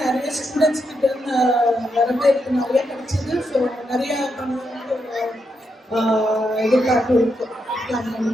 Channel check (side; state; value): both; normal; correlation 0.82